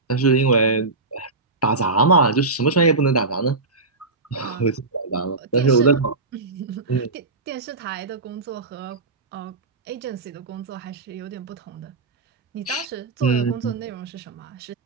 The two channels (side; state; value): left; quieter; 3.6 dB